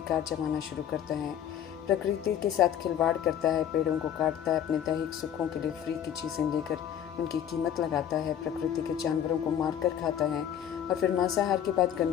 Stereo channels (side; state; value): right; quieter; 9.7 dB